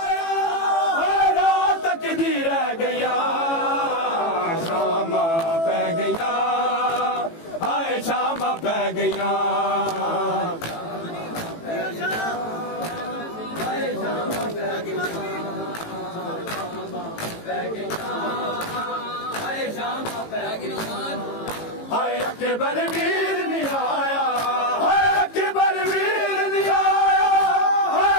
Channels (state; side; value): late; right; 18 ms